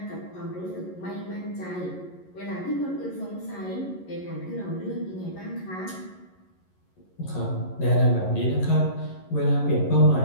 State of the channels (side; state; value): right; late; 11 ms